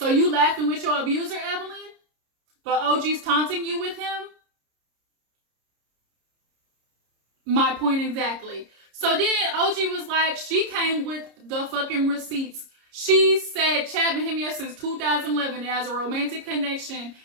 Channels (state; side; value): late; left; 30 ms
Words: you laughing with your abuser, Evelyn? But OG's taunting you with him? My point exactly. So then OG was like, she came with the fucking receipts. She said Chad been him here since 2011 as a romantic connection.